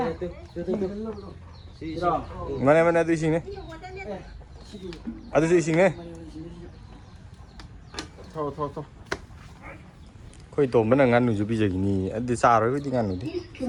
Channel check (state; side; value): identical; both; correlation 1.00